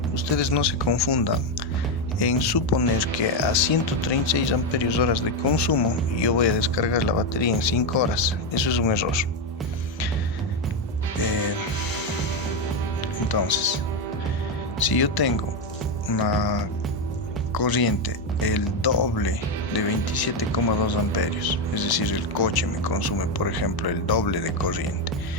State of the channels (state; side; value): normal; both; correlation 0.07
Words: ustedes no se confundan en suponer que a 136 amperios horas de consumo yo voy a descargar la batería en 5 horas. Eso es un error. Entonces, si yo tengo una corriente el doble de 27,2 amperios, es decir, el coche me consume, por ejemplo, el doble de corriente,